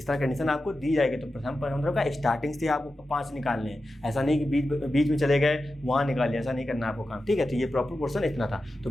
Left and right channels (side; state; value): both; normal; correlation 0.92